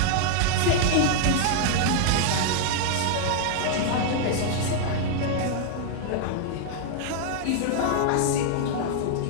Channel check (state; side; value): different; both; correlation 0.00